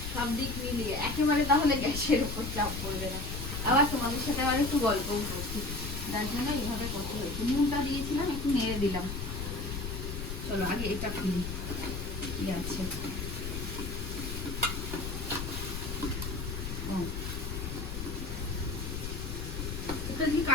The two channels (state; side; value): noise; left; rumble, 5 dB below the sound